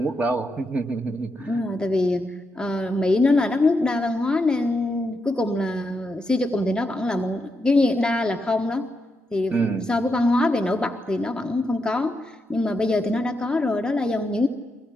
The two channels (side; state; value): both; normal; correlation 0.84